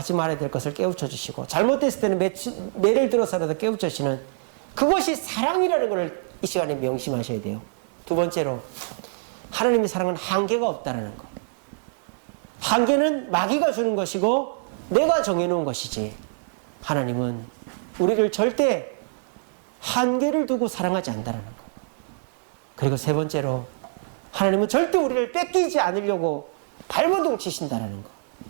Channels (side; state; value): left; silent; digital silence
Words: 말아야 될 것을 깨우쳐 주시고, 잘못됐을 때는 매를 들어서라도 깨우쳐 주시는 그것이 사랑이라는 것을 이 시간에 명심하셔야 돼요. 2번째로, 하나님의 사랑은 한계가 없다는 것. 한계는 마귀가 주는 것이고 내가 정해놓은 것이지, 하나님은 우리를 절대 한계를 두고 사랑하지 않는다는 것. 그리고 3번째로, 하나님은 절대 우리를 뺏기지 않으려고 발버둥 치신다는 것.